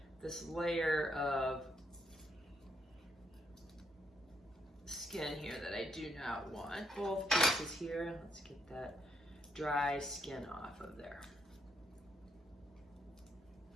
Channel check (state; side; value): normal; both; correlation 0.74